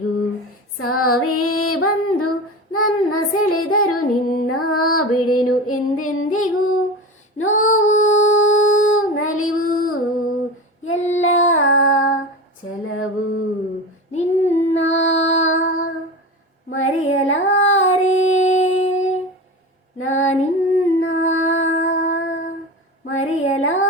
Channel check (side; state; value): both; normal; correlation 0.27